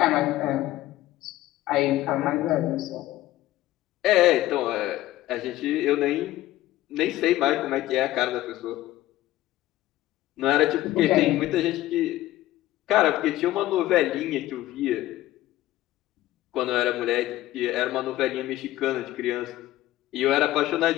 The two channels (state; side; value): quieter; right; 15.5 dB